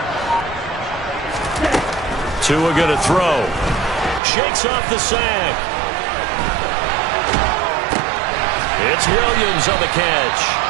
Tua going to throw. Shakes off the sack. It's Williams on the catch.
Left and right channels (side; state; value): left; drops out; at 4.2 s